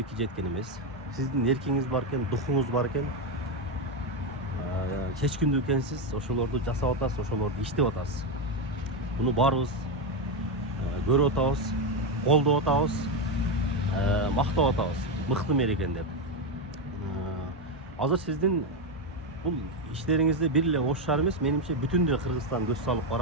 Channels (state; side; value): normal; both; correlation 0.08